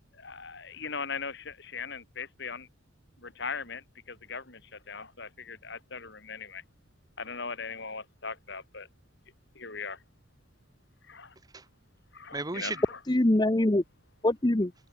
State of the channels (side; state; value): both; normal; correlation 0.67